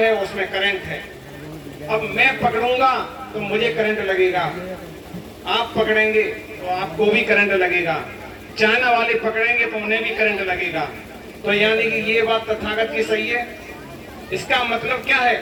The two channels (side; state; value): both; identical; correlation 1.00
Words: उसमें करंट है। अब मैं पकड़ूंगा तो मुझे करंट लगेगा, आप पकड़ेंगे तो आपको भी करंट लगेगा, चाइना वाले पकड़ेंगे तो उन्हें भी करंट लगेगा। तो यानी कि ये बात तथागत की सही है। इसका मतलब क्या है